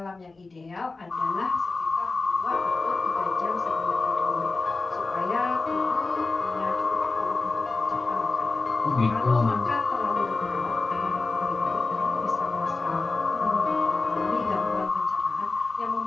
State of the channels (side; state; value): right; quieter; 3.6 dB